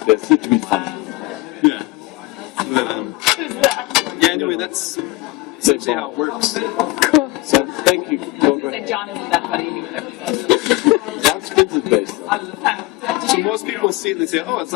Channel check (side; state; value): right; quieter; 20.3 dB